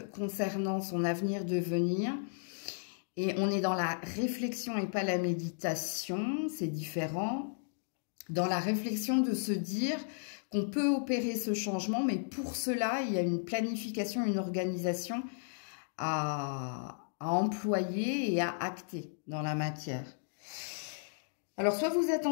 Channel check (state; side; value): silent; right; digital silence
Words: concernant son avenir de venir. Et on est dans la réflexion et pas la méditation. C'est différent. Dans la réflexion de se dire qu'on peut opérer ce changement, mais pour cela, il y a une planification, une organisation à employer et à acter dans la matière. Alors, soit vous